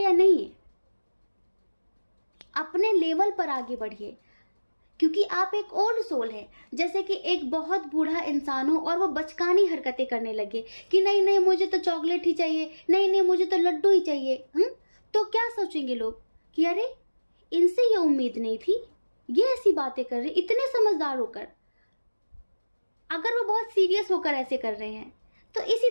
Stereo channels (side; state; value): both; inverted; correlation -1.00